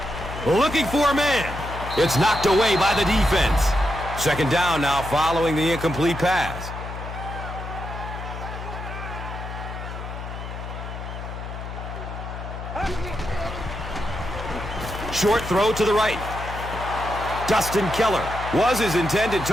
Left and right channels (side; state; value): left; noise; hum, 8 dB below the sound